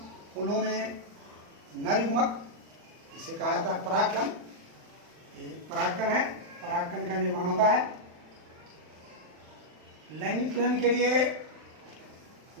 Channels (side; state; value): left; late; 39 ms